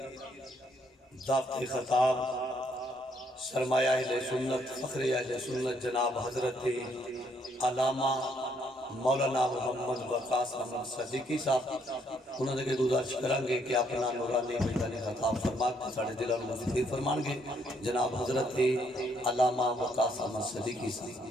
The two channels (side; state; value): both; normal; correlation 0.70